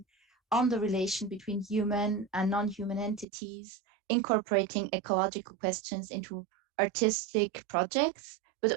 on the relation between human and non-human entities, incorporating ecological questions into artistic projects, but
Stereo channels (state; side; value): drops out; left; at 3.2 s